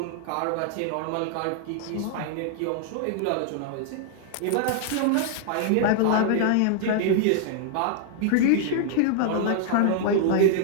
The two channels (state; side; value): different; both; correlation -0.01